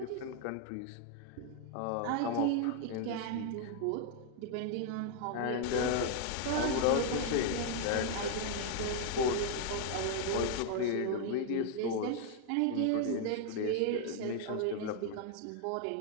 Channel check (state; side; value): different; both; correlation 0.00